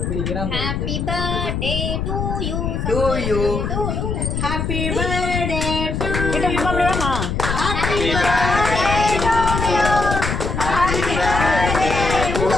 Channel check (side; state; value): left; noise; rumble, 2 dB below the sound